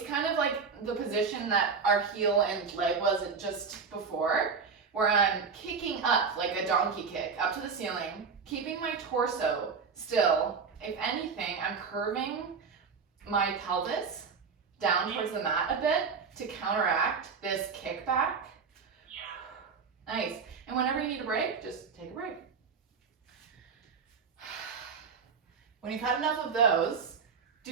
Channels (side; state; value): left; quieter; 5.5 dB